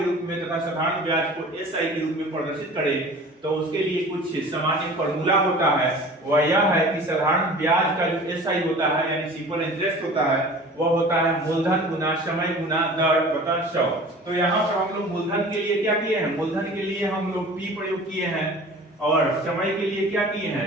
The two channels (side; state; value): both; normal; correlation 0.42